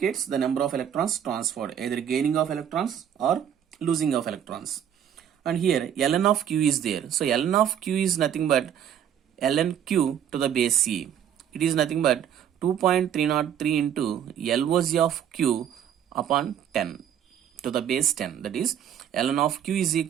the number of electrons transferred, either gaining of electrons or losing of electrons. And here ln of Q is there. So ln of Q is nothing but ln Q to the base C. It is nothing but 2.303 into LOC of Q upon 10 to the base 10. That is ln of Q is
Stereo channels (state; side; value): quieter; left; 9.4 dB